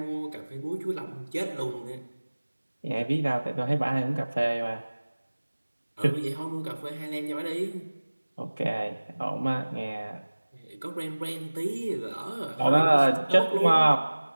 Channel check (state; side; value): inverted; both; correlation -1.00